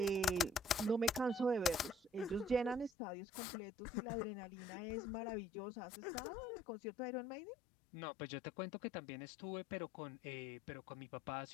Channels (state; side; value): drops out; right; at 2.9 s